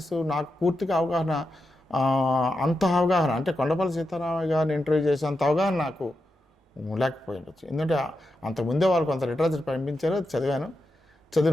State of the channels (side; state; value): both; normal; correlation 0.87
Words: నాకు పూర్తిగా అవగాహన, అంత అవగాహన అంటే కొండపల్లి సీతారామయ్య గారిని ఇంటర్వ్యూ చేసేంత అవగాహన నాకు లేకపోయి ఉండొచ్చు. ఎందుకంటే అంతకుముందే వాళ్ళు కొంత లిటరేచర్ పంపించారు, చదివాను.